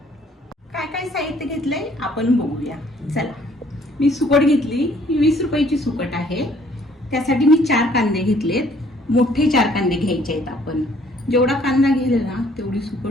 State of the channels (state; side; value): normal; both; correlation 0.61